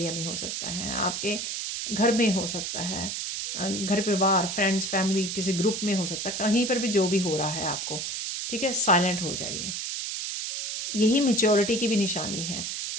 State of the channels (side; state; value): right; noise; hiss, 4 dB below the sound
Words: में हो सकता है, आपके घर में हो सकता है, घर परिवार, फ्रेंड्स, फैमिली, किसी ग्रुप में हो सकता है, कहीं पर भी जो भी हो रहा है आपको, ठीक है, साइलेंट हो जाइए। यही मैच्योरिटी की भी निशानी है।